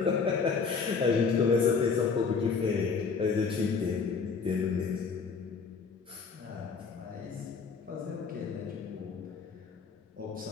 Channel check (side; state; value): right; quieter; 5.3 dB